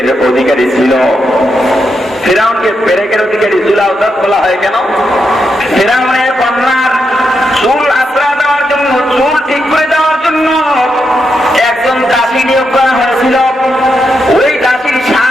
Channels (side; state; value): both; normal; correlation 0.83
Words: অধিকারী ছিল। ফিরআউনকে পেরেকের অধিকারী জুল আউতাদ বলা হয় কেন? ফিরআউনের কন্যার চুল আশ্রা দেওয়ার জন্য, চুল ঠিক করে দেওয়ার জন্য একজন দাসী নিয়োগ করা হয়েছিল। ওই দাসীর